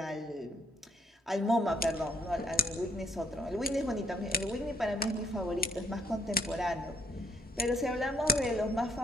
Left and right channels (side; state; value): both; normal; correlation 0.67